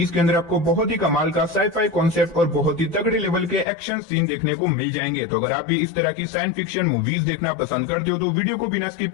के अंदर आपको बहुत ही कमाल का साई-फाई कॉन्सेप्ट और बहुत ही तगड़े लेवल के एक्शन सीन देखने को मिल जाएंगे। तो अगर आप भी इस तरह की साइंस फिक्शन मूवीज देखना पसंद करते हो तो वीडियो को बिना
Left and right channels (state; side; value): drops out; right; at 3.7 s